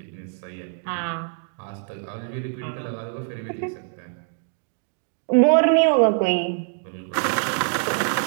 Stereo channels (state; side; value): silent; left; digital silence